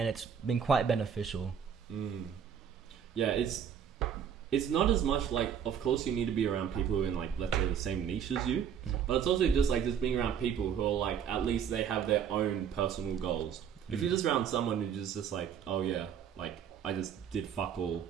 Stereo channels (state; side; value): quieter; left; 8.1 dB